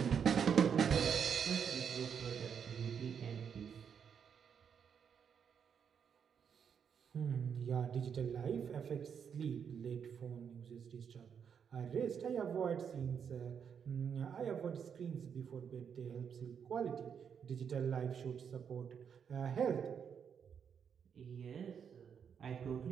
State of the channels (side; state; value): left; quieter; 7.4 dB